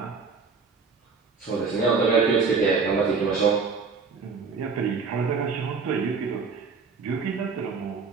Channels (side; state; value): left; quieter; 5.0 dB